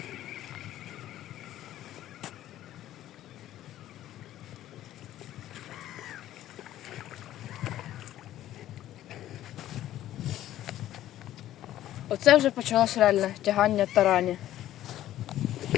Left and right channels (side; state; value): right; quieter; 13.2 dB